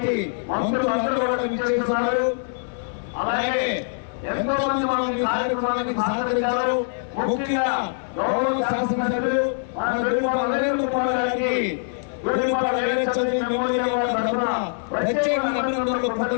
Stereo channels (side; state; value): right; silent; 62 dB below the other